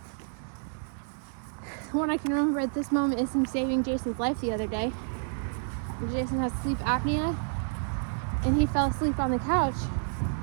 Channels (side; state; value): left; silent; digital silence